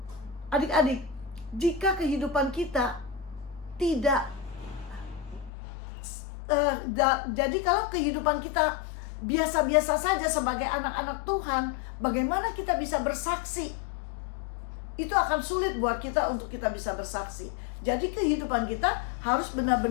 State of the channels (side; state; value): right; drops out; at 5.5 s